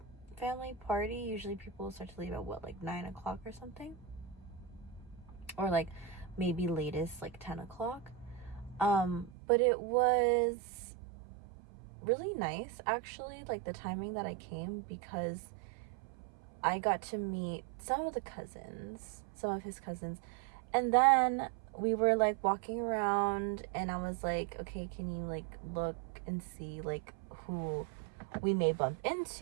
family party. Usually people start to leave at what, like 9 o'clock or something, or like maybe latest like 10 o'clock. But it was really nice, actually, like the timing that I came, because I got to meet some of his cousins, and then we were like walking around, and I was like, okay, can you like look and see like who we may bump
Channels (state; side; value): drops out; left; at 9.3 s